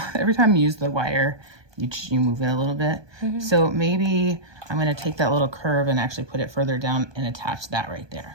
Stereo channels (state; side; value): late; left; 1.2 ms